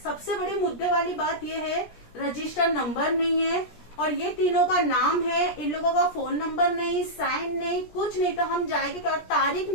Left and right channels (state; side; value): late; right; 17 ms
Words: सबसे बड़े मुद्दे वाली बात ये है रजिस्टर नंबर नहीं है, और ये तीनों का नाम है, इन लोगों का फोन नंबर नहीं, साइन नहीं, कुछ नहीं। तो हम जाएंगे और तारीख